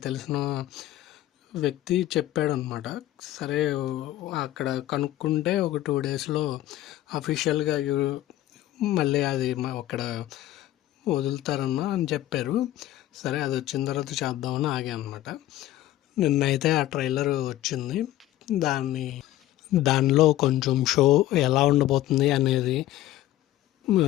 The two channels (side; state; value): right; quieter; 14.5 dB